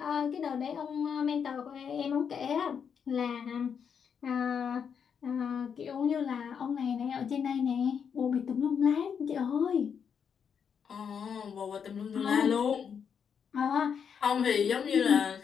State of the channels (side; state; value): right; quieter; 7.1 dB